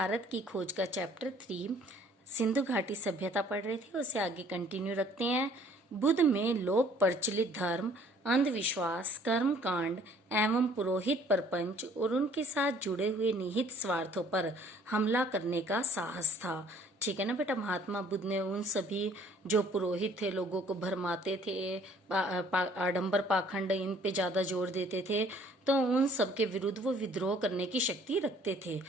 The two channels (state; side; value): normal; both; correlation 0.58